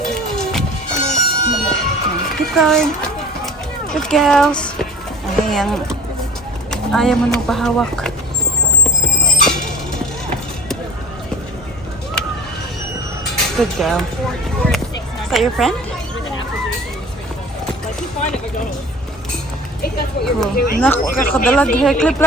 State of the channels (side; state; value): both; normal; correlation 0.43